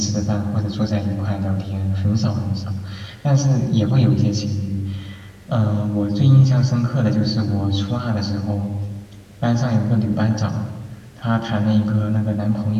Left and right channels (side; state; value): both; identical; correlation 1.00